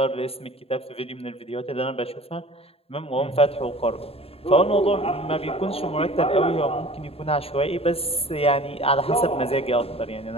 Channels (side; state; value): right; late; 0.28 ms